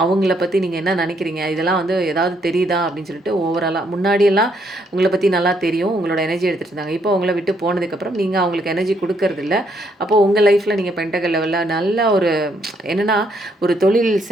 அவங்கள பற்றி நீங்கள் என்ன நினைக்கிறீங்க, இதெல்லாம் வந்து ஏதாவது தெரியுதா அப்படின்னு சொல்லிட்டு ஓவராலாக முன்னாடியெல்லாம் உங்களை பற்றி நல்லா தெரியும். உங்களோட எனர்ஜி எடுத்துகிட்டு இருந்தாங்க. இப்போ உங்களை விட்டு போனதுக்கப்புறம் நீங்கள் அவங்களுக்கு எனர்ஜி கொடுக்கறதில்ல. அப்போது உங்கள் லைஃப்பில் நீங்கள் பெண்டகல் லெவலில் நல்ல ஒரு என்னென்னா ஒரு தொழில்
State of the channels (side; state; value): both; normal; correlation 0.72